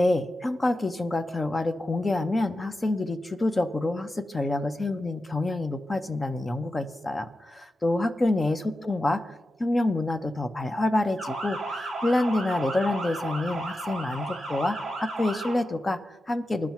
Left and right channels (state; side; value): normal; both; correlation 0.91